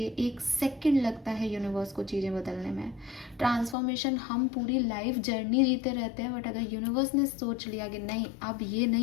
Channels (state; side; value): drops out; right; at 3.8 s